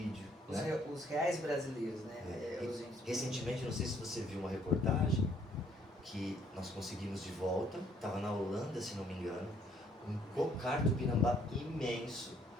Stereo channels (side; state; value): both; normal; correlation 0.64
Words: Né? Os reais brasileiros, né? Recentemente, não sei se você viu uma reportagem que nós conseguimos de volta, estava na Holanda, se não me engano, um cocar Tupinambá imenso.